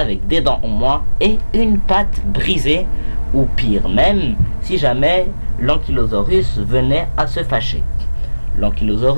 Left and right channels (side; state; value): both; inverted; correlation -1.00